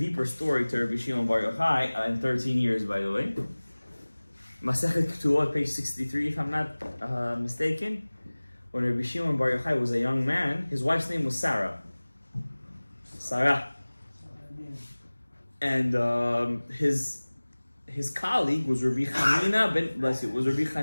story to Rabbi Shimon Bar Yochai in 13 years, by the way. Masechet Ketubot, page 63, if I'm not mistaken. When Rabbi Shimon Bar Yochai was a young man, his wife's name was Sarah. And his colleague was Rabbi Chanina ben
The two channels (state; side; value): inverted; both; correlation -1.00